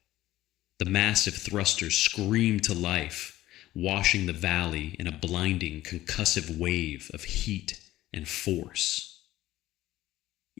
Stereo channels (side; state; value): right; quieter; 15.4 dB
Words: The massive thrusters screamed to life, washing the valley in a blinding, concussive wave of heat and force.